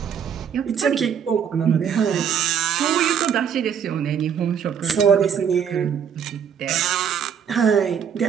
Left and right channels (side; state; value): left; quieter; 7.8 dB